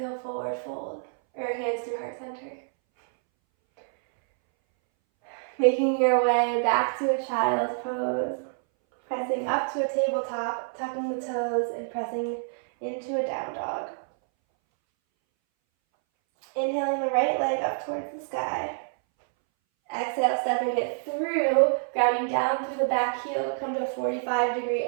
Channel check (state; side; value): silent; left; 60 dB below the other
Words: forward fold, or hands through heart center. Making your way back to a child's pose. Pressing up to a tabletop, tucking the toes, and pressing into a down dog. Inhaling the right leg up towards the sky. Exhale, stepping it through, grounding down through the back heel to come to a 45-degree